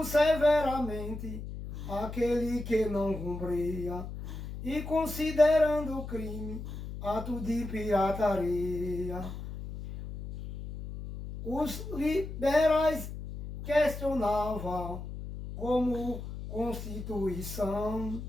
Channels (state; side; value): noise; left; hum, 9 dB below the sound